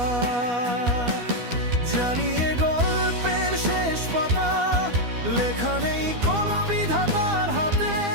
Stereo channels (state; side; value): late; left; 12 ms